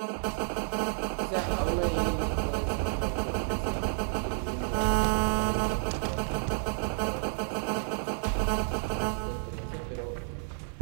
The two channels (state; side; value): silent; left; 58 dB below the other